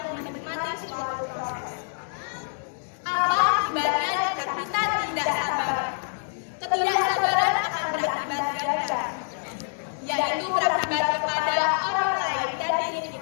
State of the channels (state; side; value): silent; right; digital silence